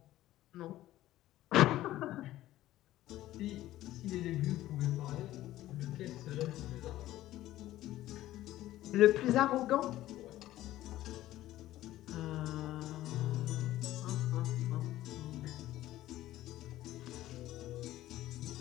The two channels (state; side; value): quieter; right; 14.8 dB